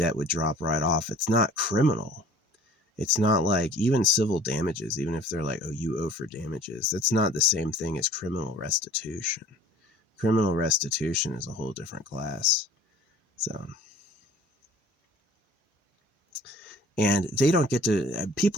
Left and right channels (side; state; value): both; normal; correlation 0.48